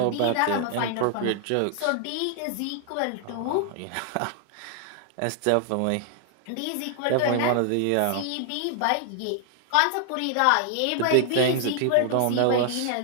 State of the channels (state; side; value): different; both; correlation 0.00